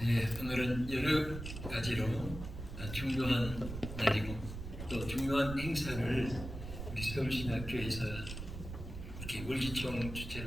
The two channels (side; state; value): right; noise; rumble, 9 dB below the sound